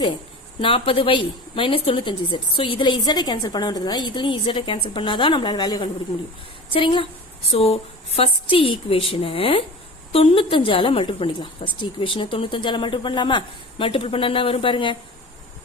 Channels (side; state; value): both; normal; correlation 0.35